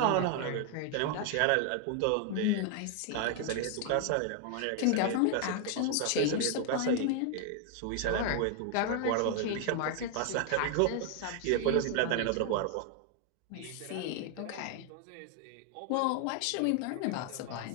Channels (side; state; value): both; different; correlation 0.00